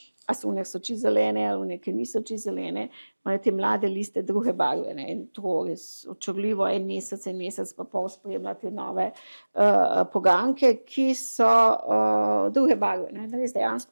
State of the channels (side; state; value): both; inverted; correlation -1.00